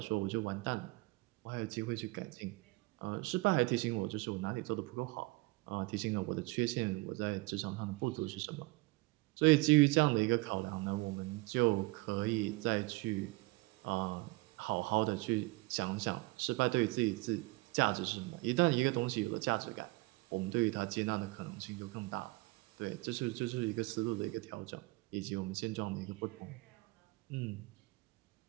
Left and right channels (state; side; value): quieter; left; 23.5 dB